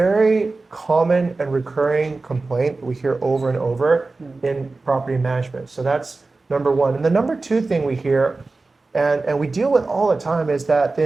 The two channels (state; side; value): quieter; left; 3.6 dB